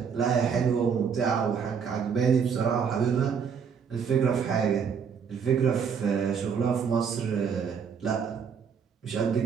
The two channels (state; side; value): quieter; left; 6.7 dB